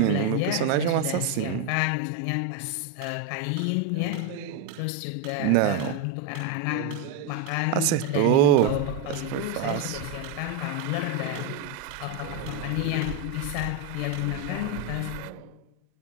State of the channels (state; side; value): different; both; correlation 0.02